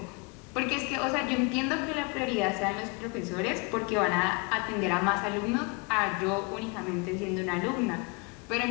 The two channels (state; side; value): quieter; right; 30.5 dB